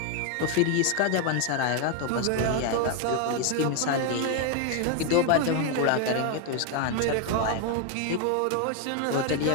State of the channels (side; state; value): both; different; correlation 0.01